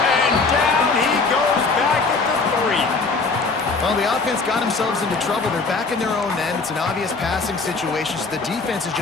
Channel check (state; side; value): quieter; right; 4.1 dB